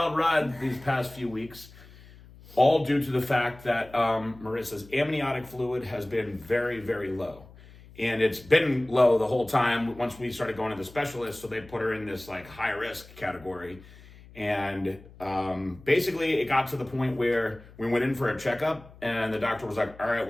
ride these past few weeks, all due to the fact that Marissa's amniotic fluid has been very, very low. And it's been low the whole time once we started going to the specialist, so they put her in this like high risk category. And basically it got to the point where we went in for a checkup and the doctor was like, all right,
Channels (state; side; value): noise; left; hum, 21 dB below the sound